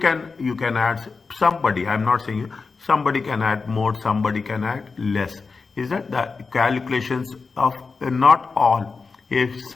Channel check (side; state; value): right; quieter; 4.5 dB